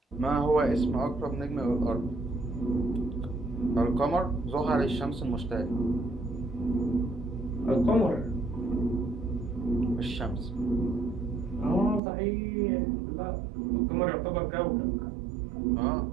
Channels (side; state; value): left; drops out; at 12.0 s